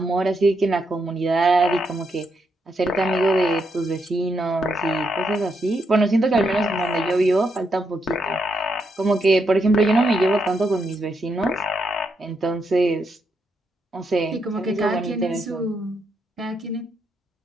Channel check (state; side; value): normal; both; correlation 0.79